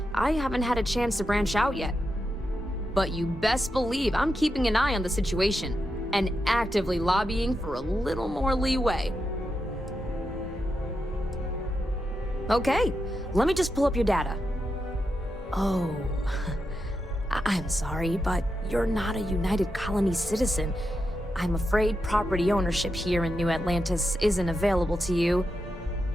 I haven't had a chance to branch out yet. But you best believe I'm keeping an eye on the situation and actively lobbying for a little more leeway. Okay, let me just pull up your data. Oh, I'm sorry, but you're not a United Colony citizen. I'm afraid property ownership here in New Atlantis isn't available to you.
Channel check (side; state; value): both; normal; correlation 0.87